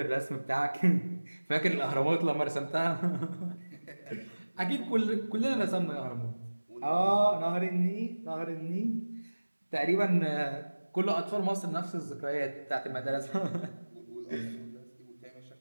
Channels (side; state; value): both; inverted; correlation -1.00